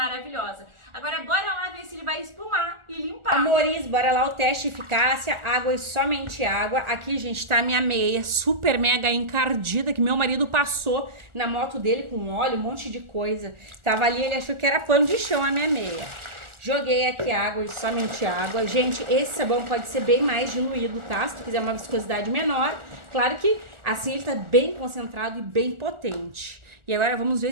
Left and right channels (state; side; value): late; left; 1.4 ms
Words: Agora bora lá ver se ele vai espumar e limpar. Amores, bora lá o teste de eficácia, água e somente água. Aqui, gente, tá a minha meia super mega encardida, que meu marido passou na moto dele com óleo, um monte de coisa. Tava ali, ele achou que era pano de chão a minha meia. Joguei aqui água e somente água. Gente, esse sabão pode ser bem mais diluído, tá? Se tu quiser uma viscosidade menor. Claro que assim ele tá bem concentrado e bem potente. E agora vamos